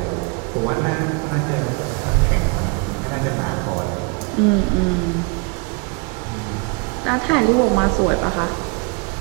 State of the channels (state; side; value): quieter; left; 30.9 dB